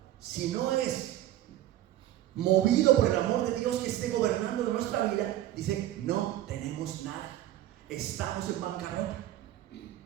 Si no es movido por el amor de Dios que esté gobernando de nuestra vida, dice, no tenemos nada, estamos en bancarrota.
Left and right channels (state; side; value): quieter; left; 13.6 dB